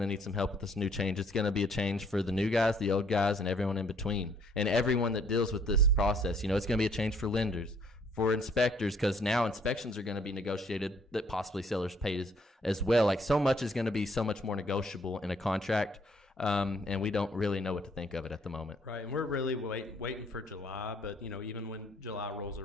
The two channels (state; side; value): normal; both; correlation 0.64